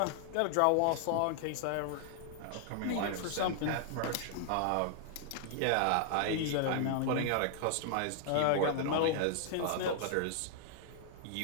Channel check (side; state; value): both; different; correlation 0.00